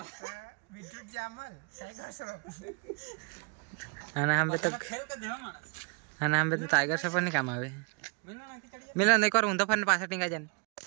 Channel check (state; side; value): quieter; left; 35.8 dB